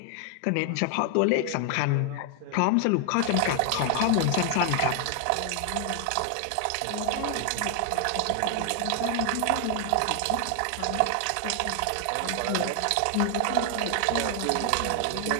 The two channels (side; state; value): both; different; correlation 0.00